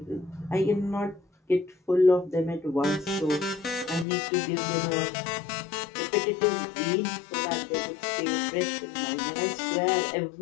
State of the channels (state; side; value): drops out; right; at 4.0 s